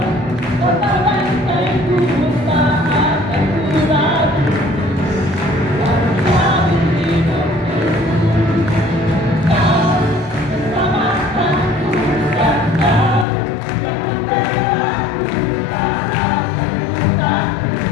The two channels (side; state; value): right; drops out; at 13.2 s